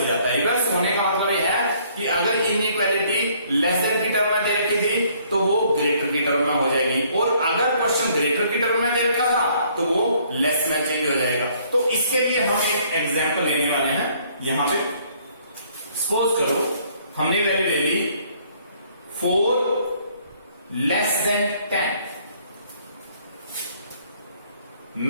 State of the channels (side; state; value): both; inverted; correlation -0.63